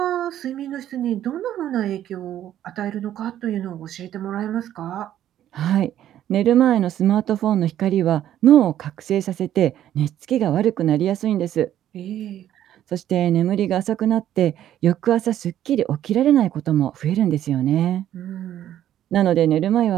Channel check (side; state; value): left; quieter; 11.6 dB